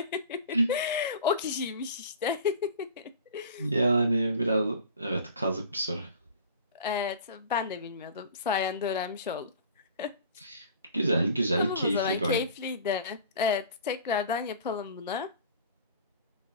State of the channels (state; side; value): inverted; both; correlation -0.42